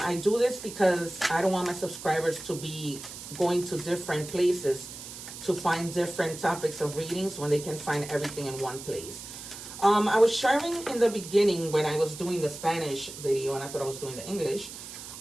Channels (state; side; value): noise; right; hiss, 12 dB below the sound